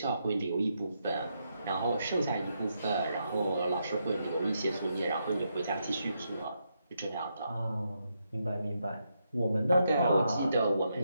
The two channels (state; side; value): inverted; both; correlation -0.81